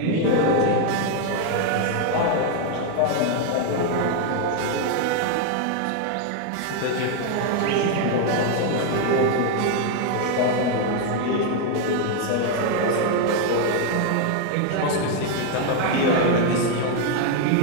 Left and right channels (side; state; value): both; different; correlation 0.01